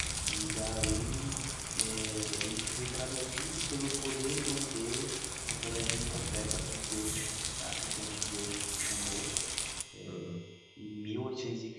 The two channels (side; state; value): both; identical; correlation 1.00